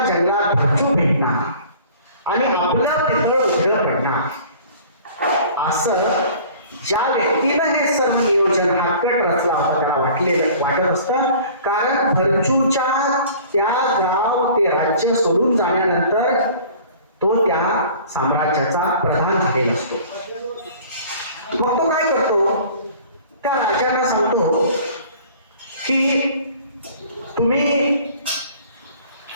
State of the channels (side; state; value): both; inverted; correlation -0.47